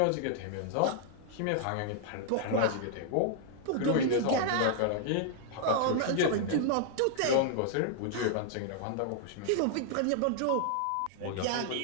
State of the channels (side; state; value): both; different; correlation -0.01